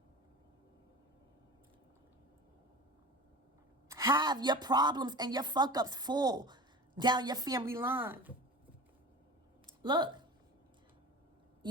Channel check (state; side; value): normal; both; correlation 0.35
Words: have your problems and your fuck-ups fall down your family line. Look,